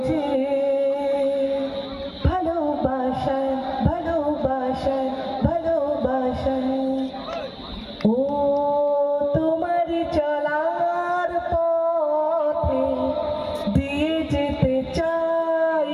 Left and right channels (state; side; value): identical; both; correlation 1.00